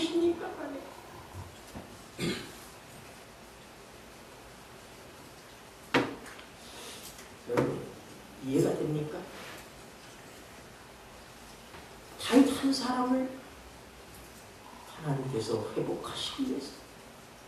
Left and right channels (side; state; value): both; identical; correlation 1.00